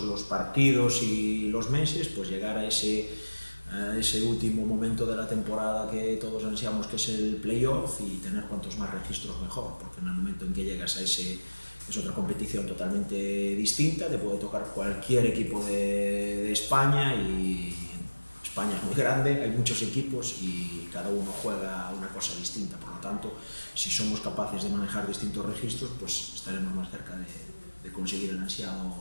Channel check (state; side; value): inverted; both; correlation -1.00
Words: los partidos y los meses, pues llegar a ese último momento de la temporada que todos ansiamos, que es el playoff, y tener cuantos más registros mejor, porque en el momento en que llegas a ese, es otra competición totalmente distinta, te puede tocar cualquier equipo de España, y España es muy grande, hay muchos equipos y cada uno juega una cosa distinta, por lo tanto, si somos capaces de manejar distintos registros, pues estaremos más cerca de conseguir el ansiado